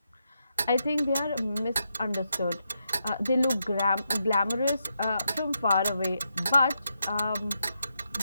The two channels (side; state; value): both; inverted; correlation -0.83